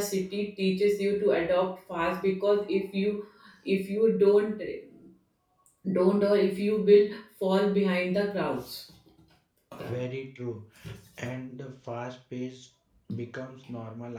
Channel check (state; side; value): identical; both; correlation 1.00